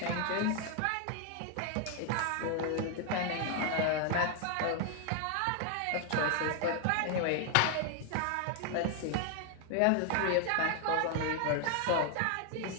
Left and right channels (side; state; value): both; different; correlation 0.00